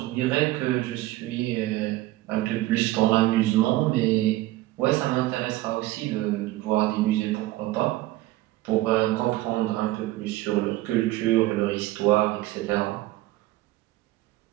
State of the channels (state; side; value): quieter; left; 17.3 dB